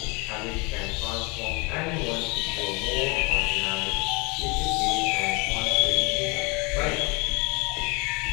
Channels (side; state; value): right; quieter; 28.0 dB